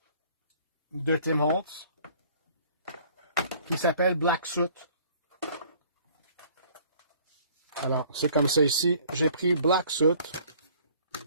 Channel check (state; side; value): inverted; both; correlation -0.55